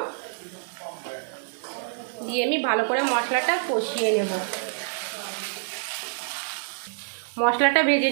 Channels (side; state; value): left; silent; digital silence